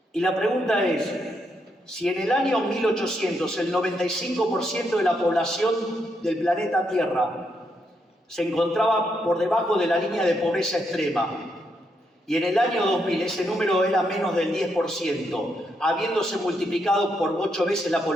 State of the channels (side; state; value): both; normal; correlation 0.79